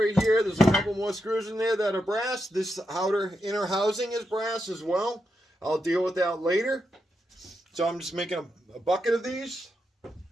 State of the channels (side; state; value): both; normal; correlation 0.85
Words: here, there's a couple more screws in there that are brass. This outer inner housing is brass as well. I'll deal with that later. So I'm just making a bucket of these.